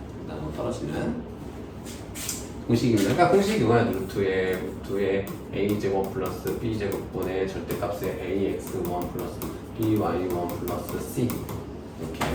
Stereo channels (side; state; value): both; identical; correlation 1.00